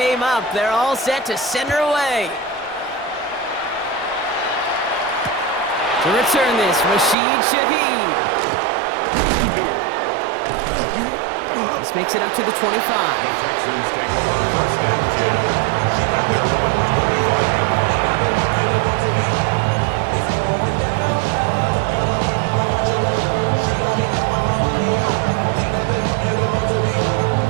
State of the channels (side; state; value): left; drops out; at 7.2 s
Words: up, they're all set to send her away. To return this, Rashid Shaheed. This makes it up to the 25. The Texans take over first and 10 at their own